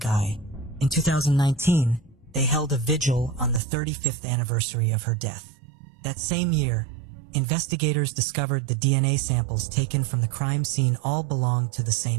eye. In 2019, they held a vigil on the 35th anniversary of her death. That same year, investigators discovered the DNA samples taken from the crime scene all belonged to the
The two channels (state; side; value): drops out; left; at 3.6 s